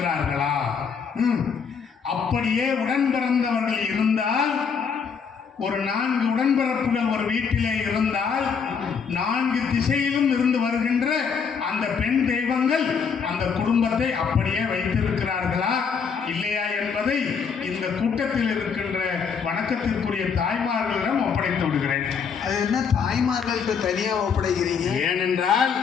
அப்படியே உடன் பிறந்தவர்கள் இருந்தால், ஒரு 4 உடன்பிறப்புகள் ஒரு வீட்டிலே இருந்தால் 4 திசையிலும் இருந்து வருகின்ற அந்த பெண் தெய்வங்கள் அந்த குடும்பத்தை அப்படியே வைத்திருக்கிறார்களா இல்லையா என்பதை இந்த கூட்டத்தில் இருக்கின்ற வணக்கத்திற்குரிய தாய்மார்களிடம் ஒப்படைத்து விடுகிறேன். அது என்ன தாய்மார்களுக்கு தனியாக ஒப்படைக்கிறீங்க? ஏனென்றால்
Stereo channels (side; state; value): right; quieter; 6.2 dB